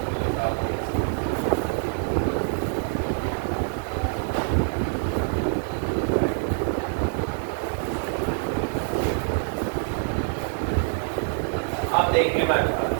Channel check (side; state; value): left; silent; 59 dB below the other